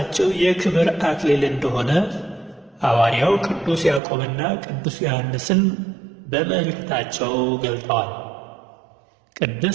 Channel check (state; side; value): drops out; left; at 4.0 s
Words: የክብር አክሊል እንደሆነ ሐዋርያው ቅዱስ ያዕቆብና ቅዱስ ዮሐንስን በመልእክታቸው ገልጠዋል።